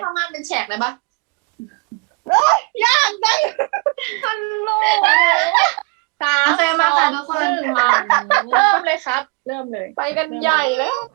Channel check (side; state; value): left; quieter; 29.7 dB